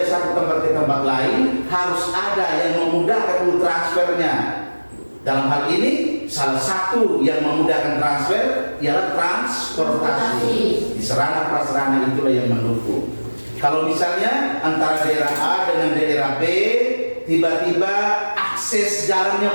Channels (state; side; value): inverted; both; correlation -1.00